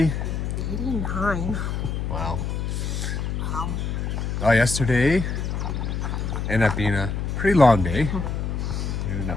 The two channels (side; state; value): left; noise; hum, 2 dB below the sound